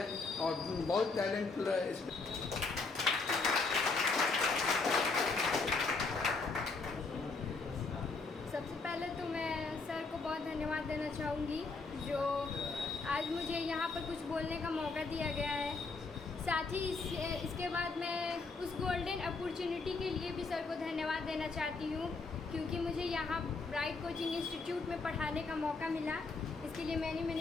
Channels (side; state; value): right; quieter; 4.0 dB